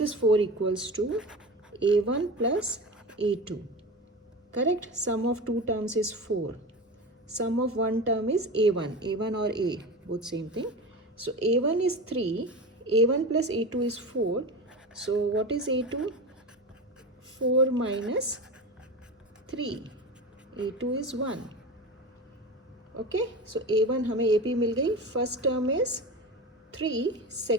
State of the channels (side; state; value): both; normal; correlation 0.27